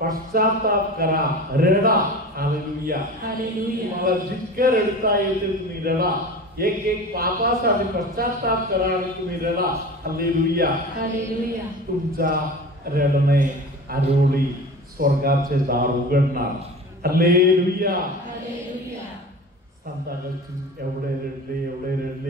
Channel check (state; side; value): normal; both; correlation 0.34